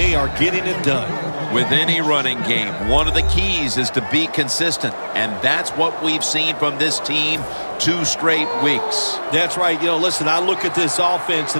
are getting it done. With any running game, one of the keys is to be consistent, and that's what we've seen from this team 2 straight weeks. That's right. You know, listen, I look at this offense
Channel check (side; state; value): both; inverted; correlation -1.00